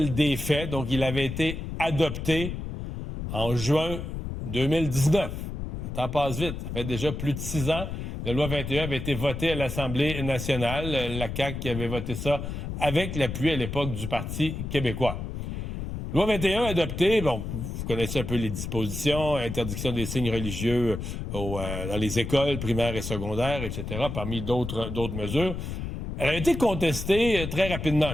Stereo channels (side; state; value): left; noise; rumble, 6 dB below the sound